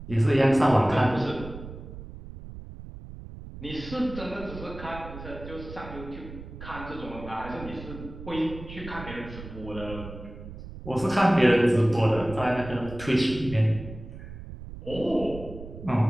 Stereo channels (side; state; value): right; noise; rumble, 13 dB below the sound